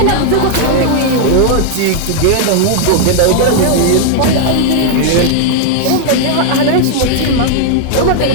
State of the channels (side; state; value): both; different; correlation 0.00